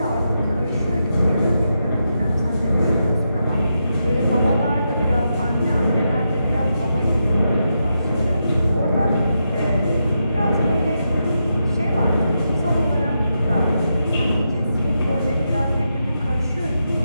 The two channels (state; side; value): inverted; both; correlation -0.85